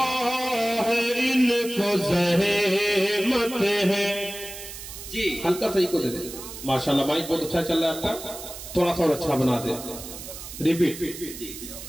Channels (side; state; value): right; noise; hiss, 12 dB below the sound